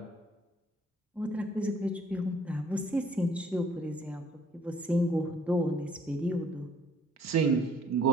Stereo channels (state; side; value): normal; both; correlation 0.59